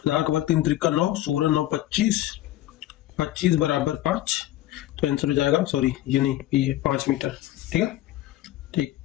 का वर्ग 3 त्रिका 9, 16 9 25, 25 बराबर 5, तो आंसर हो जाएगा, सॉरी ये नहीं, ये 5 मीटर, ठीक है। ठीक,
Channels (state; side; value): quieter; right; 14.7 dB